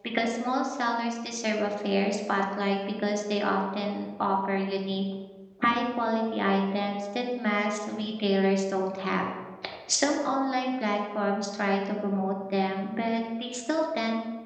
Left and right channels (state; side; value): identical; both; correlation 1.00